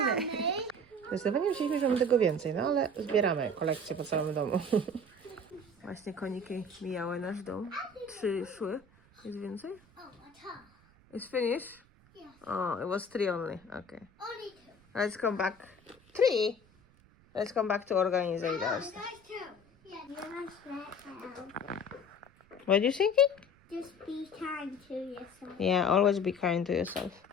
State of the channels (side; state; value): right; noise; rumble, 29 dB below the sound